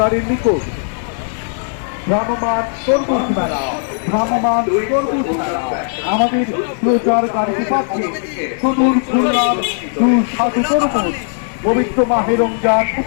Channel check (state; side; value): silent; right; digital silence